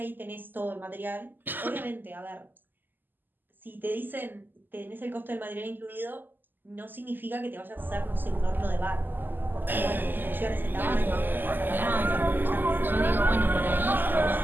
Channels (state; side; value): late; left; 0.090 ms